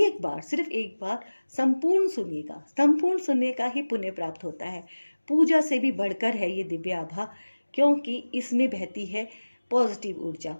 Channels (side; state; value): both; inverted; correlation -1.00